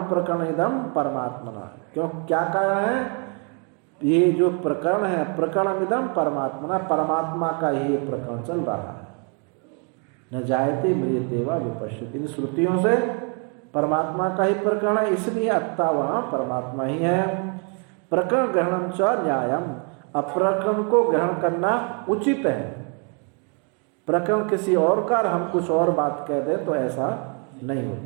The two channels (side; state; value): left; quieter; 37.8 dB